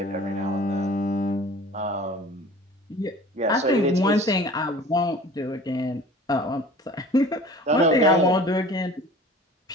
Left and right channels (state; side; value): normal; both; correlation 0.44